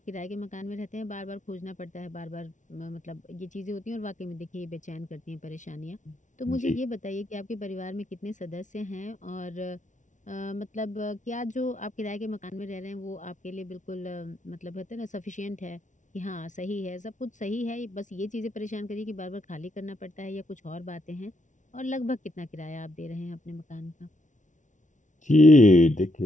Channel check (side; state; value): right; late; 0.36 ms